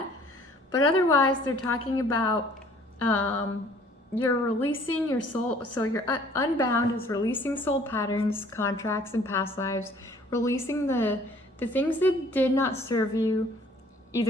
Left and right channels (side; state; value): both; normal; correlation 0.56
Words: But otherwise, they're talking about you're releasing your soul. So your unbound is releasing soul patterns, contracts, and past lives, releasing the things that did not serve you